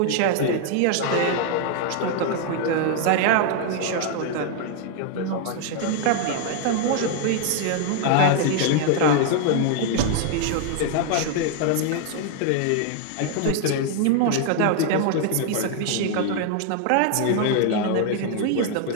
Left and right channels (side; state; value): both; different; correlation 0.00